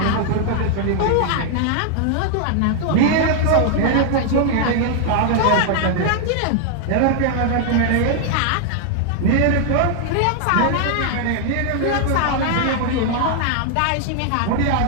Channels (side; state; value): both; different; correlation 0.00